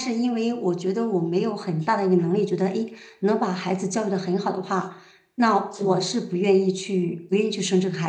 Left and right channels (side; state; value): both; identical; correlation 1.00